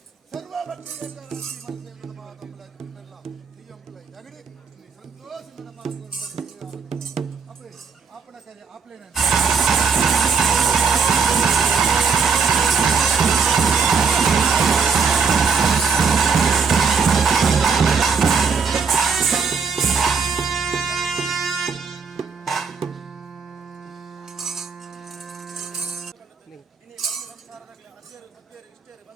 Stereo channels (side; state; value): left; quieter; 5.5 dB